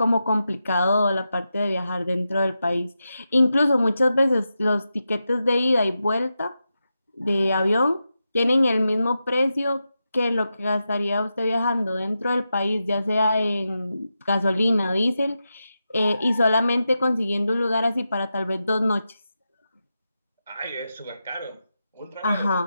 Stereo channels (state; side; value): inverted; both; correlation -0.90